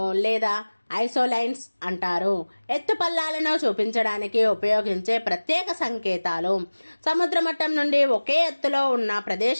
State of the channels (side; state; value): both; inverted; correlation -1.00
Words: లేదా ఐసోలైన్స్ అంటారు. ఎత్తుపల్లాలను చూపించడానికి ఉపయోగించే ప్రత్యేక సంకేతాలు సముద్ర మట్టం నుండి ఒకే ఎత్తులో ఉన్న